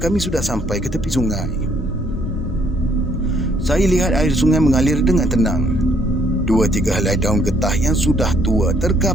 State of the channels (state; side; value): normal; both; correlation 0.67